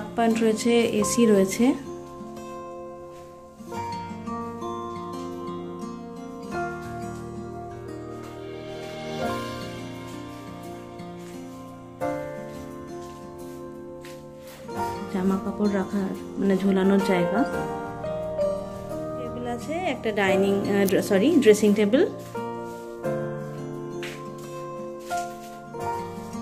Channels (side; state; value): both; identical; correlation 1.00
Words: পয়েন্ট রয়েছে, এসি রয়েছে। জামা কাপড় রাখার মানে ঝোলানোর জায়গা। টেবিল আছে, একটা ড্রেসিং টেবিল।